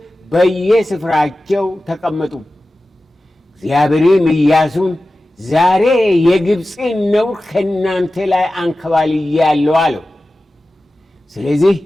በየስፍራቸው ተቀመጡ። እግዚአብሔርም ኢያሱን ዛሬ የግብፅን ነውር ከእናንተ ላይ አንከባልያለሁ አለው። ስለዚህ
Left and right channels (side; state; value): both; normal; correlation 0.95